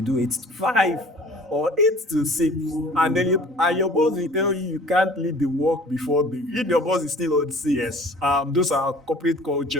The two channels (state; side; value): normal; both; correlation 0.48